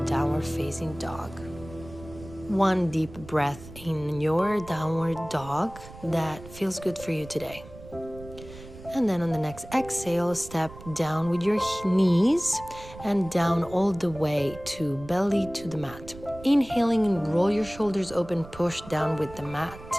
downward facing dog. One deep breath in your downward dog that feels good for you today. And then on the next exhale, step down with your knees and down all the way to belly to the mat. Inhaling and roll your shoulders open, push down with the mat.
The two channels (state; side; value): noise; right; rumble, 17 dB below the sound